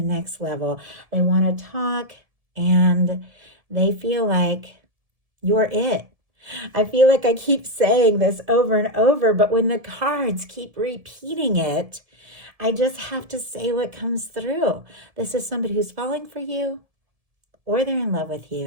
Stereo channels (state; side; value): late; left; 1.7 ms